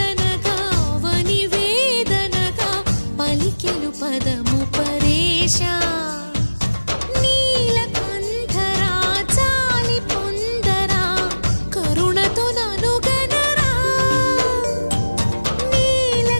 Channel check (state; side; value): inverted; both; correlation -1.00